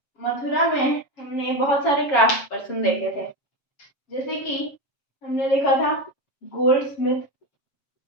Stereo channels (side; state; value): right; late; 7.2 ms